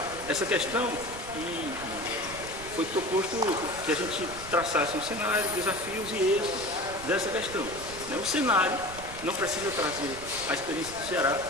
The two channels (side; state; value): right; noise; rumble, 14 dB below the sound